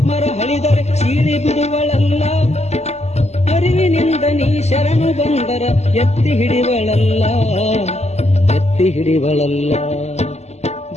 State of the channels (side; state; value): right; late; 0.32 ms